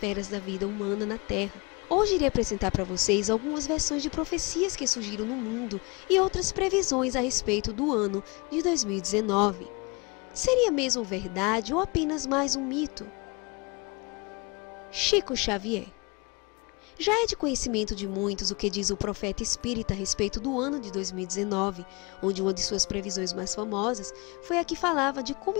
da vida humana na Terra. Hoje irei apresentar para vocês algumas versões de profecias que surgiram no mundo e outras previsões a respeito do ano de 2019. Seria mesmo verdade ou apenas mais um mito? Chico Xavier. Já é de conhecimento de muitos o que diz o profeta espírita a respeito do ano de 2019, onde uma de suas previsões mais famosas foi a que falava de como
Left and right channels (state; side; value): quieter; right; 27.9 dB